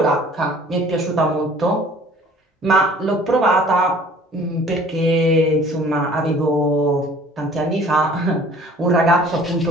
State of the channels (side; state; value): both; normal; correlation 0.51